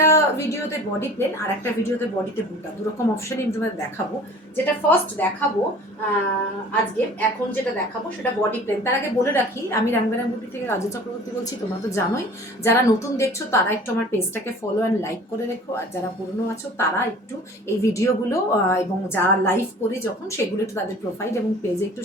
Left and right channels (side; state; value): both; normal; correlation 0.45